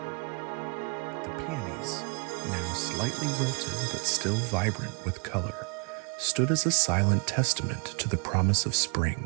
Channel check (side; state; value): left; quieter; 34.6 dB